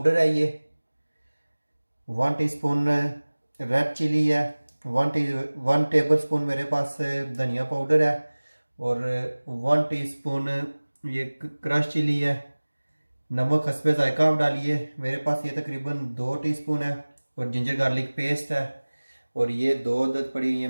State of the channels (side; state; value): both; inverted; correlation -1.00